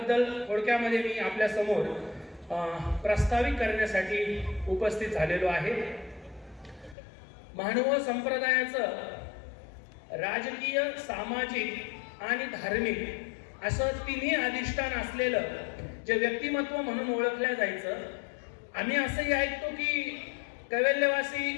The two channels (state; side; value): drops out; right; at 7.0 s